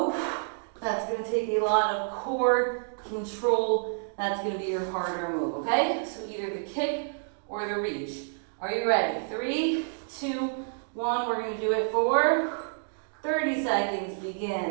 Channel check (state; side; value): silent; left; digital silence